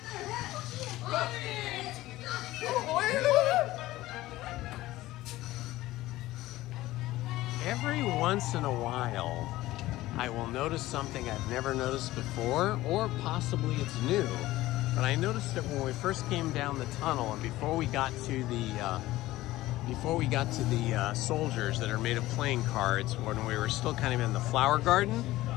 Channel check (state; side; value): quieter; right; 16.9 dB